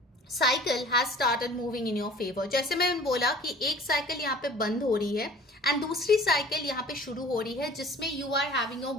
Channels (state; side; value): normal; both; correlation 0.47